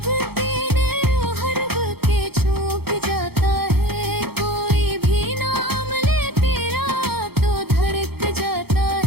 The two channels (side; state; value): left; late; 0.96 ms